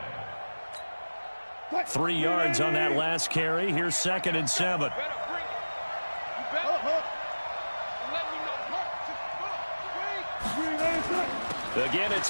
line. 3 yards on that last carry. Here's 2nd and 7. Again,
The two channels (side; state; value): both; inverted; correlation -1.00